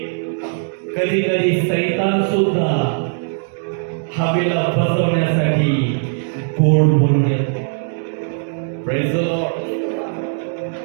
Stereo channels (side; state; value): left; silent; digital silence